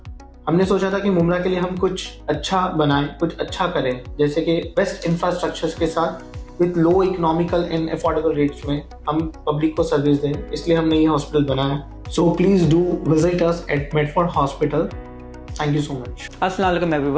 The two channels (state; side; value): identical; both; correlation 1.00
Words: हमने सोचा था कि मुमरा के लिए हम कुछ अच्छा बनाएं, कुछ अच्छा करें, जैसे कि बेस्ट इंफ्रास्ट्रक्चर्स के साथ with low economical and affordable rates में हम पब्लिक को सर्विस दें। इसलिए हमने ये हॉस्पिटल बनाया। So please do visit us at Medford hospital. Thank you so much. अस्सलाम वालेकुम